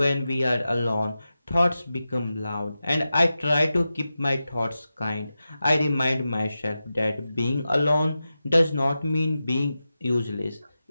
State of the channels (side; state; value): both; inverted; correlation -0.93